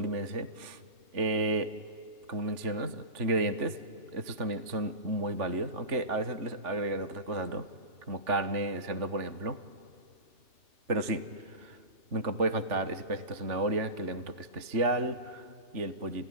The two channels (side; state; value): left; late; 3.4 ms